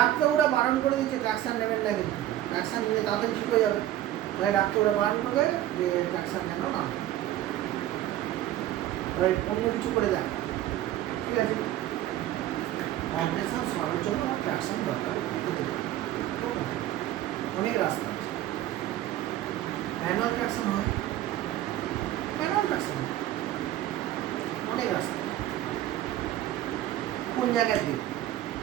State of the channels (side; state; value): left; quieter; 13.3 dB